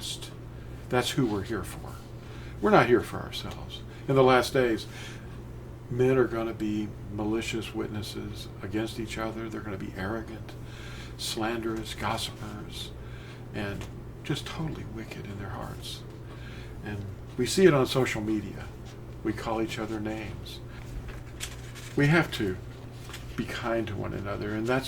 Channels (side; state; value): both; identical; correlation 1.00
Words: That's who we're here for. We're not here for ourselves. In the last days, men are going to be malicious witnesses against each other. They're going to be arrogant, slanderous, gossipers, and just totally wicked in their hearts. And we see it on social media. We call each other names. We have to be kind to one another, and